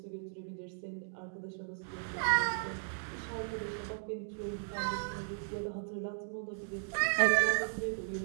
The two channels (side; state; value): left; silent; digital silence